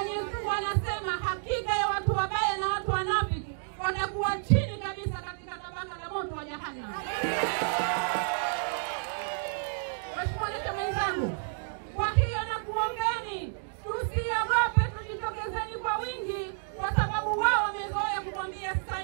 Mungu anasema hakika ya watu wabaya na watu wanafiki watakuwa chini kabisa katika tabaka la moto wa jahannam. Mheshimiwa Rais mwenzangu, kwa hiyo nakuombeni tusiogope, tujitokezeni kwa wingi, kwa sababu wao wamezoea kukwambia sasa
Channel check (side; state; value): left; silent; digital silence